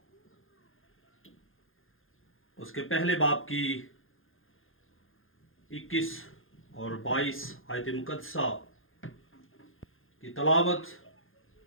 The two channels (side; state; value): right; late; 0.59 ms